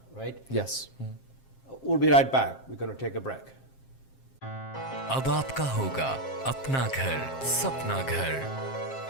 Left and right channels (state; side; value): late; right; 7.5 ms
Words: right? Yes. We'll be right back. We're going to take a break. अब आपका होगा अपना घर, सपना घर।